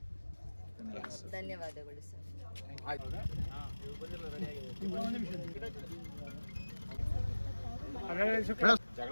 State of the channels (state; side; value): inverted; both; correlation -1.00